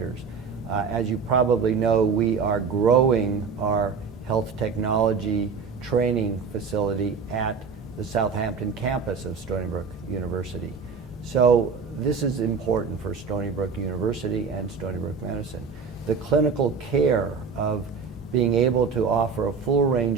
As you probably know, we are growing our health technology training facility at the Southampton campus of Stony Brook University. So this is important for Stony Brook University and Stony Brook Medicine. The clinical care of being able to offer a full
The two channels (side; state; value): left; quieter; 5.5 dB